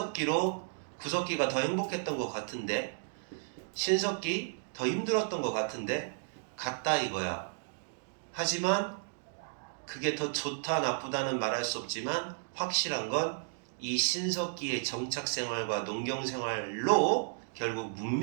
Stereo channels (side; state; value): left; silent; digital silence